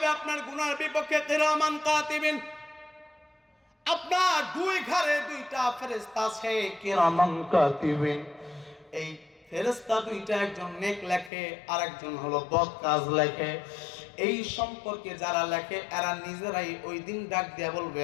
আপনার গুনার বিপক্ষে কিরামান কাতিবিন। আপনার দুই ঘরে দুইটা ফেরেশতা আছে, কিরামান কাতিবিন। এই ফেরেশতা দুইটা, একজন নেক লেখে আর একজন হলো বদ কাজ লেখে। এই সম্পর্কে যারা লেখে এরা নিজেরাই ওই দিন ডাক দিয়া বলবে,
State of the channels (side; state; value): right; drops out; at 11.3 s